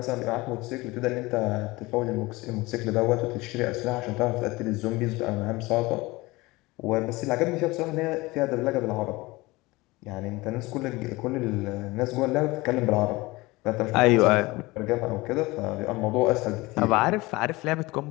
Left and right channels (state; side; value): quieter; right; 21.6 dB